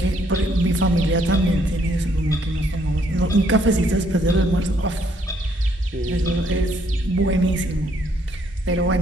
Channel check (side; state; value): both; normal; correlation 0.68